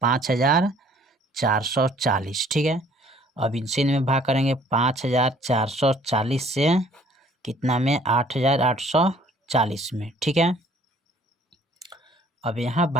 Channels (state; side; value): normal; both; correlation 0.57